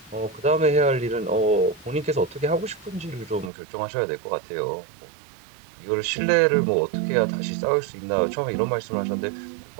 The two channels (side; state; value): left; drops out; at 3.5 s